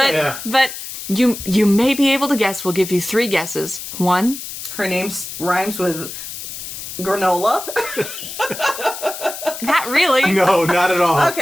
But you may be able to guess. We'll give you 3 guesses. 1. Her name rhymes with granola. Not really. No, not at all.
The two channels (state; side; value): noise; left; hiss, 9 dB below the sound